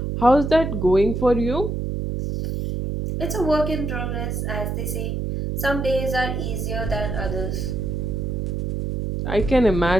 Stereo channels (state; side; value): noise; right; hum, 2 dB below the sound